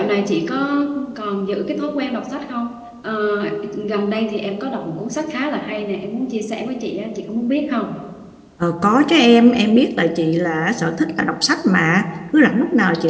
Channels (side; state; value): both; identical; correlation 1.00